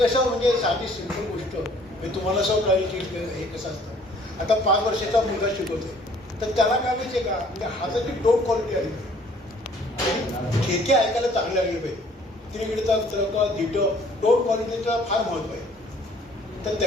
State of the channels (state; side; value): normal; both; correlation 0.58